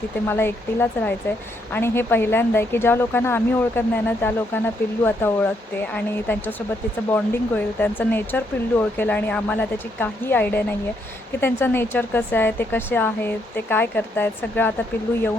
तिथे मला एकटीलाच राहायचं आहे. आणि हे पहिल्यांदा आहे की ज्या लोकांना आम्ही ओळखत नाही ना, त्या लोकांना पिल्लू आता ओळखते आणि त्यांच्यासोबत तिचं बॉन्डिंग होईल. त्यांचं नेचर पिल्लू ओळखेल आणि आम्हाला त्याची काही आयडिया नाही आहे की त्यांचं नेचर कसं आहे, ते कसे आहेत, ते काय करत आहेत. सगळं आता पिल्लू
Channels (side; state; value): both; normal; correlation 0.75